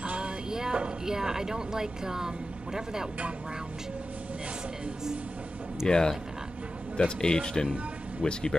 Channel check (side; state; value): both; normal; correlation 0.92